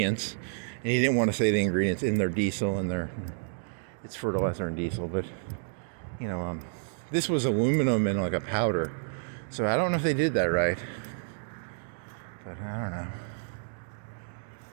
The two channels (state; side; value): silent; left; digital silence